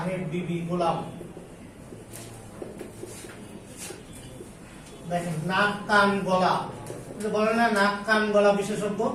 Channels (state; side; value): identical; both; correlation 1.00